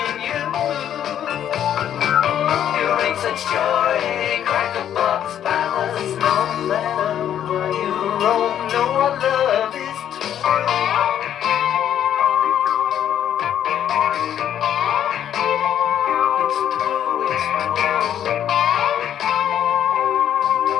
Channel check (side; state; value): right; quieter; 10.2 dB